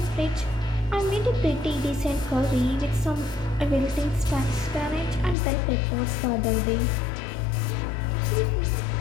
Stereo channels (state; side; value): drops out; right; at 5.4 s